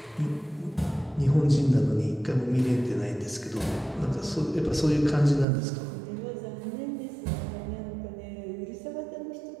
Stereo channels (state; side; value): drops out; left; at 5.5 s